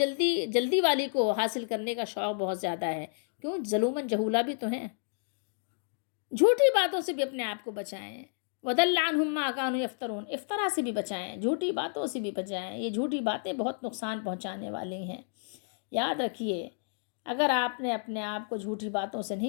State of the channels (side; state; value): right; silent; digital silence